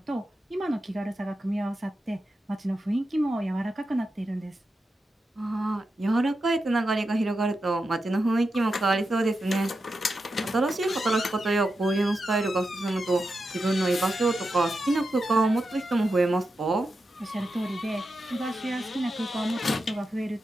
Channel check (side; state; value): both; normal; correlation 0.89